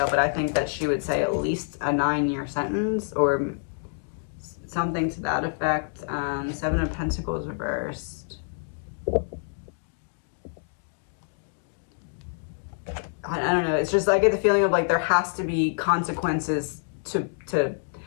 but I think that she would say at least a 9-year sentence or something to that effect. Seven of Pentacles reversed. I don't know. It's just, I get the feeling of like there has to be consequences to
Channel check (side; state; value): right; silent; digital silence